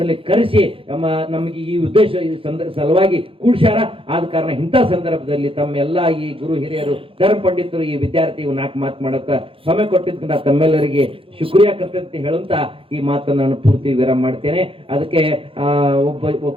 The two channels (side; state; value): left; late; 0.26 ms